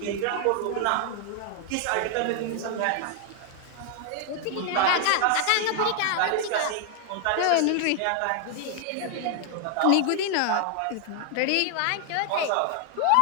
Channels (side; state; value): both; different; correlation 0.00